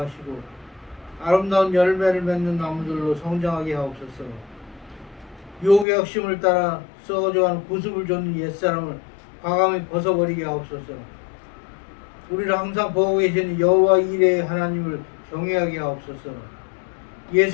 아름다운 열매를 맺는 나무들로 성장하게 하옵소서. 유혹의 욕심을 따라 썩어져가는 구습을 줬는 옛사람을 과감히 벗어버리게 하옵소서. 우리를 항상 보고 계신 여호와 이레의 하나님을 경외하게 하옵소서.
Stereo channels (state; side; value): drops out; right; at 5.9 s